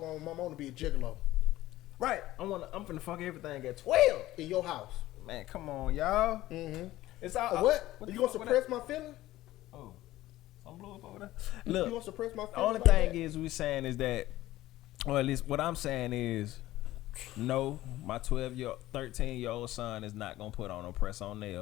my mom to be a gigolo. Right. I'm finna fuck everything at 12 in your house. Man, come on, y'all. Mm-hmm. It's all what you gonna suppress my feelings? Oh, some blew up over there. You Look, gonna suppress my feelings? the only thing is we saying is that, or at least what I'm saying is, no, my 13-year-old son is not gonna put on no press-on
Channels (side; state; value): right; quieter; 15.9 dB